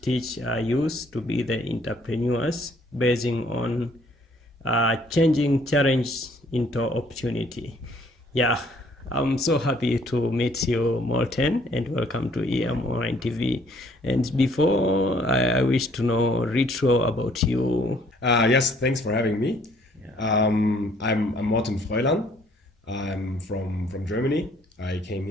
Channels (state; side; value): normal; both; correlation 0.62